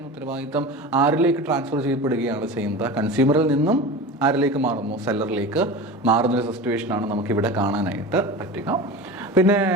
ഉത്തരവാദിത്തം ആരിലേക്ക് ട്രാൻസ്ഫർ ചെയ്യപ്പെടുകയാണ് ചെയ്യുന്നത്? കൺസ്യൂമറിൽ നിന്നും ആരിലേക്ക് മാറുന്നു? സെല്ലറിലേക്ക് മാറുന്നൊരു സിറ്റുവേഷനാണ് നമുക്കിവിടെ കാണാനായിട്ട് പറ്റുക. പിന്നെ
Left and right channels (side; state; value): both; normal; correlation 0.31